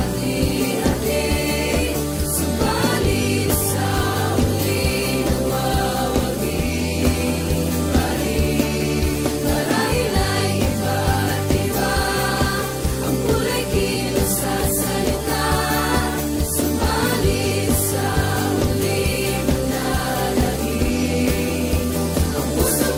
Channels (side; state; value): both; identical; correlation 1.00